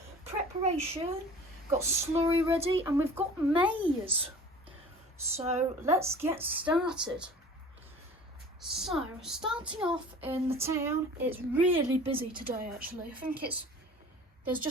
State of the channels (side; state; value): both; normal; correlation 0.44